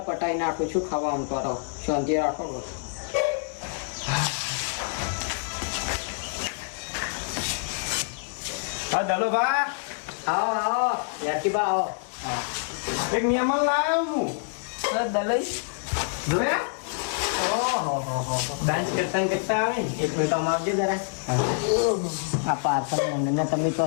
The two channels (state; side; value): silent; right; 60 dB below the other